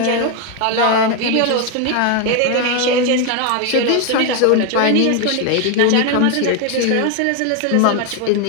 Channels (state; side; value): different; both; correlation 0.01